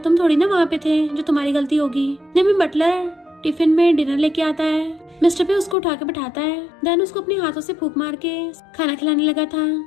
थोड़ी ना वहाँ पे थे जो तुम्हारी गलती होगी। नहीं बटलर टिफिन में डिनर लेके आता है, मिस्टर पे उसको उठा के बैठाता है, देन उसको अपने हाथों से फूंक मार के खाना खिलाने लगा था।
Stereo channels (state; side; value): drops out; right; at 5.8 s